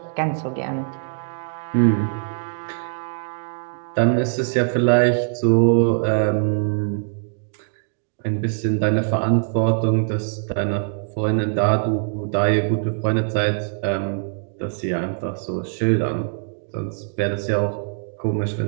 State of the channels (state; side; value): silent; left; digital silence